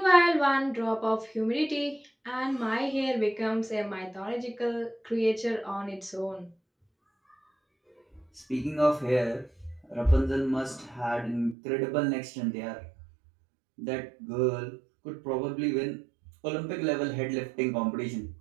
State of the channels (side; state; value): left; drops out; at 11.6 s